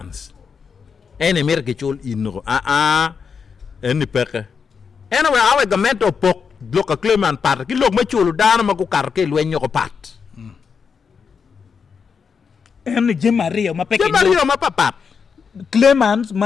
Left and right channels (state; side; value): quieter; right; 6.0 dB